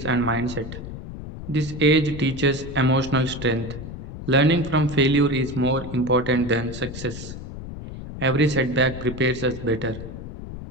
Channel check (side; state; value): left; noise; rumble, 10 dB below the sound